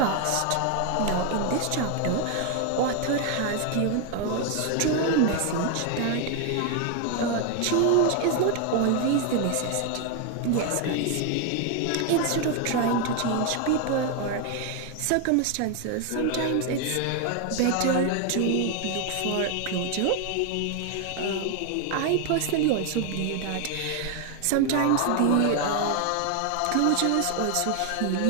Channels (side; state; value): both; different; correlation 0.01